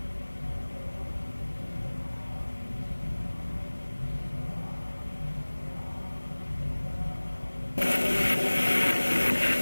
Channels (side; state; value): both; inverted; correlation -1.00